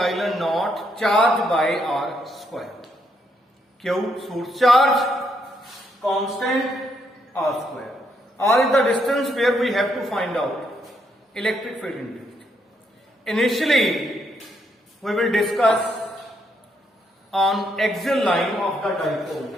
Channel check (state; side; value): normal; both; correlation 0.76